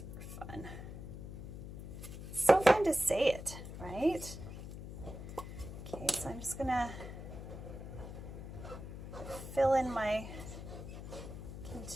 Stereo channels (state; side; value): noise; left; hum, 9 dB below the sound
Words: fun. It's so fun to say it, right? Okay, so I'm just gonna fill in my